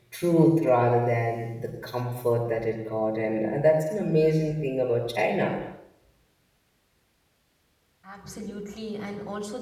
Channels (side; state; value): both; identical; correlation 1.00